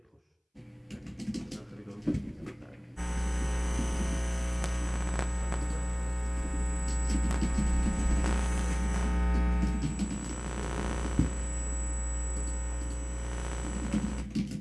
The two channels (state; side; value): identical; both; correlation 1.00